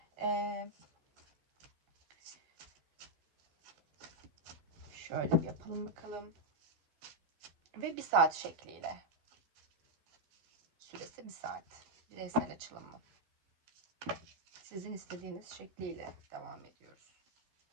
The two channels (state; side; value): late; left; 12 ms